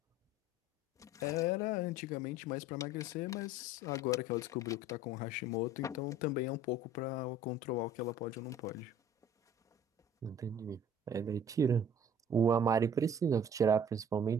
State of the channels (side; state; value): both; normal; correlation 0.49